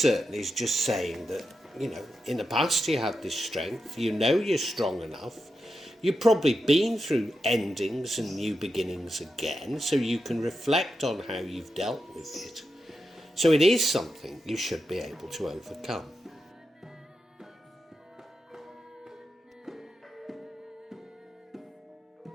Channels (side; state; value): both; normal; correlation 0.88